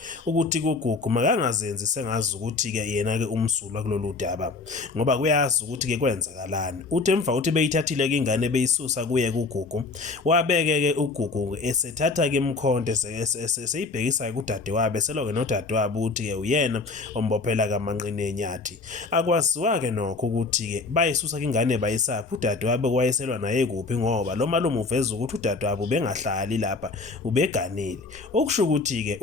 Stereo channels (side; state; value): right; quieter; 3.8 dB